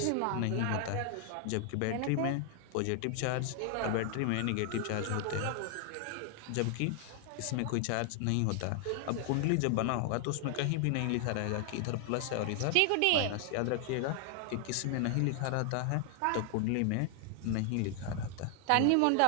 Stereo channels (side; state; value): both; different; correlation 0.00